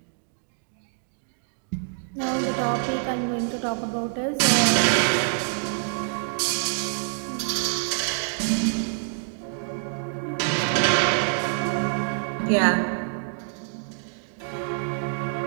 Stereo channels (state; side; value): silent; left; digital silence